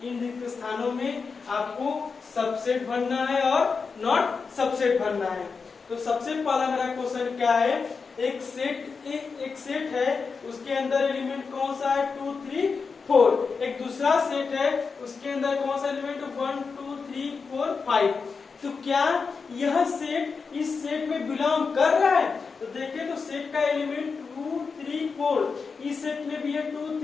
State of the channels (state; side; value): quieter; right; 5.0 dB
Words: इन रिक्त स्थानों में आपको सबसेट भरना है और नॉट सबसेट भरना है। तो सबसे पहला मेरा क्वेश्चन क्या है, एक सेट है, उसके अंदर एलिमेंट कौन सा है 2 3 4। एक दूसरा सेट है, उसके अंदर कौन सा एलिमेंट 1 2 3 4 5। तो क्या यह सेट इस सेट में बिलोंग कर रहा है? तो देखिए तो सेट का एलिमेंट 2 3 4, इस सेट में भी है 2